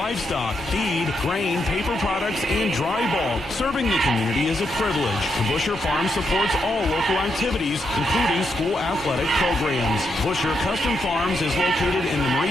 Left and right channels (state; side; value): normal; both; correlation 0.81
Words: feed, grain, paper products, and dry bulk. Serving the community is a privilege. Busher Farms supports all local activities, including school athletic programs. Busher Custom Farms is located in the